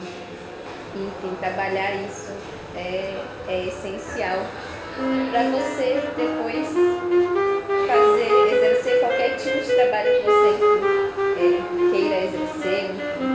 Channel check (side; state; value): both; identical; correlation 1.00